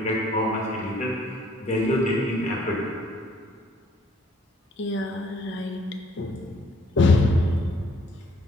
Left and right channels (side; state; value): both; normal; correlation 0.63